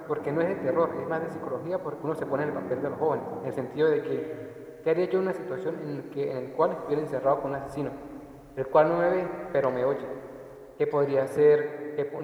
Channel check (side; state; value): both; identical; correlation 1.00